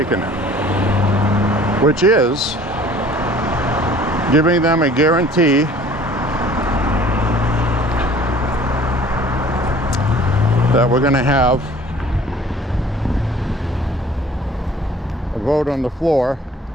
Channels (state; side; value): normal; both; correlation 0.51